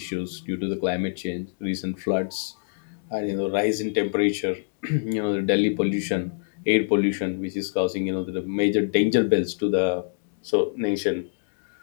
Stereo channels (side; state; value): right; silent; digital silence